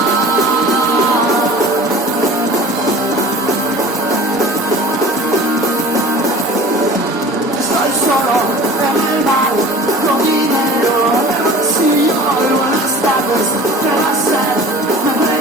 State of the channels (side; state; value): both; normal; correlation 0.41